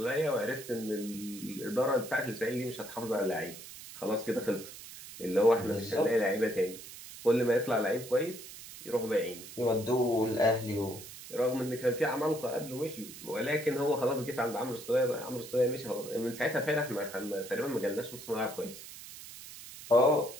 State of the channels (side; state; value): right; noise; hiss, 14 dB below the sound